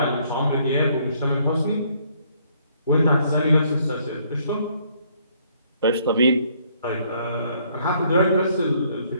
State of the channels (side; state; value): both; inverted; correlation -0.66